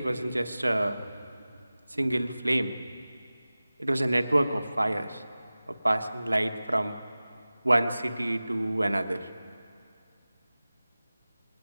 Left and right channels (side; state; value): both; inverted; correlation -0.97